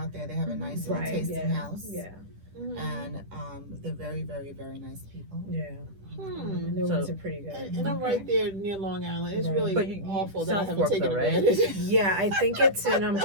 there. They have a nice little tasting yeah, house. yeah, Mhm. And they're very, very, very nice people. yeah. Hmm. And their So- wines are pretty good. And I'm right there near Long Island. It's Right. really But you- awful that I South haven't Fork, taken though, right? advantage. Yeah, I think it's in. I'm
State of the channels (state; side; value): late; left; 10 ms